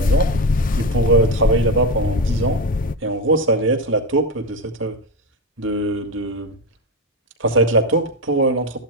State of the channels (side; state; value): both; normal; correlation 0.15